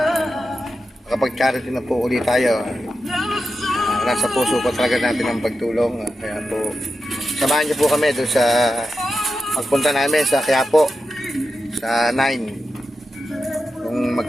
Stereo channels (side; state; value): both; normal; correlation 0.90